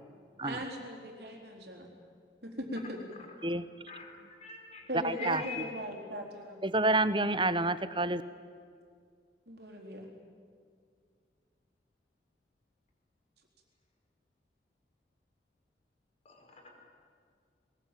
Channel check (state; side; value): normal; both; correlation 0.10